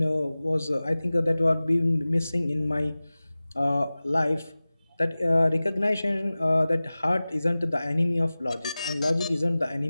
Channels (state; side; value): inverted; both; correlation -0.98